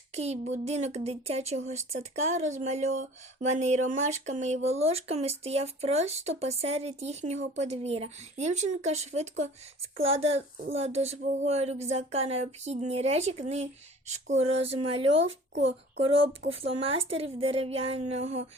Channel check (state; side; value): normal; both; correlation 0.46